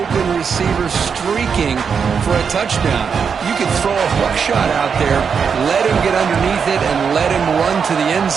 receiver streaking for a touchdown. You could throw a hook shot out there, let him get underneath it, and let him run to the end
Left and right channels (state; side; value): quieter; left; 6.3 dB